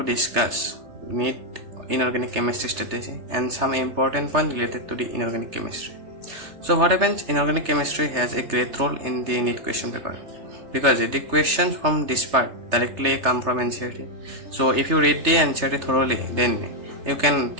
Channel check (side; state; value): left; late; 3.3 ms